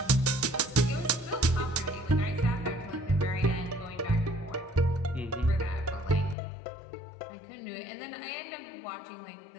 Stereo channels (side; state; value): right; drops out; at 6.4 s